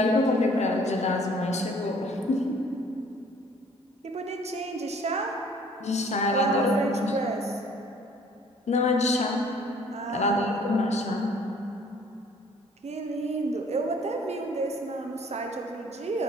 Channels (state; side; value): normal; both; correlation 0.56